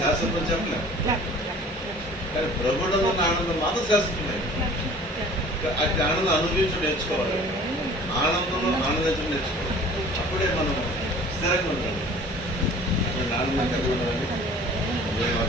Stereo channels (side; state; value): both; normal; correlation 0.47